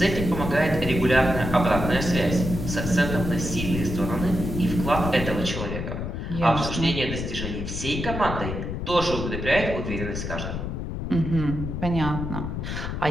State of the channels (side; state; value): left; noise; rumble, 4 dB below the sound